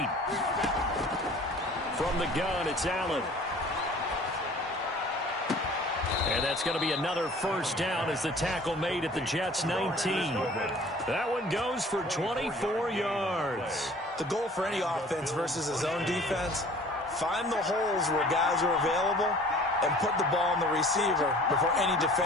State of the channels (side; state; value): both; normal; correlation 0.49